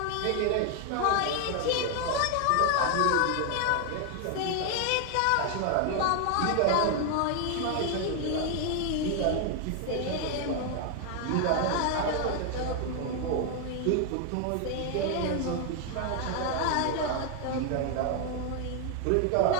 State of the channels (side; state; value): both; different; correlation 0.00